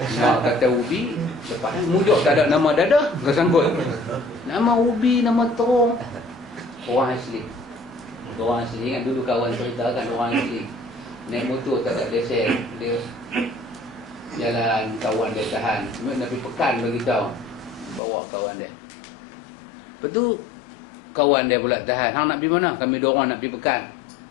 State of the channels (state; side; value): drops out; right; at 18.0 s